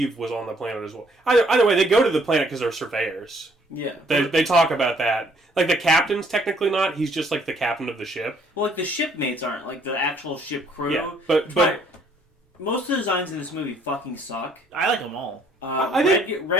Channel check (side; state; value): both; normal; correlation 0.64